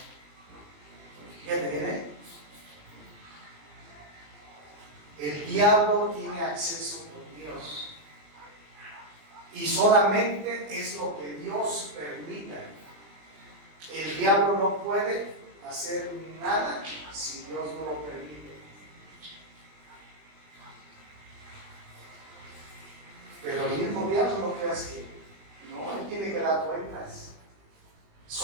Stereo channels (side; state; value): left; late; 20 ms